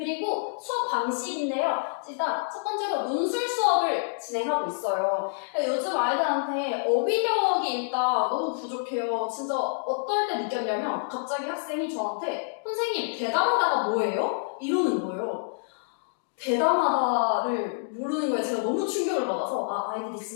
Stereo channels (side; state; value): right; silent; digital silence